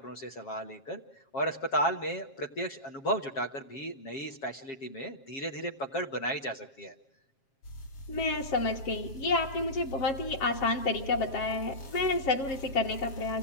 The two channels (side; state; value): right; late; 7.4 ms